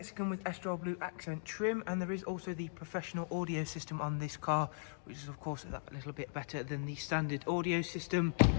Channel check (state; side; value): silent; right; digital silence